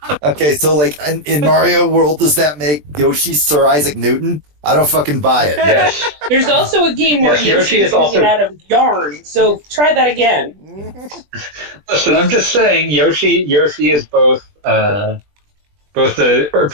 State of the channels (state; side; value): late; left; 20 ms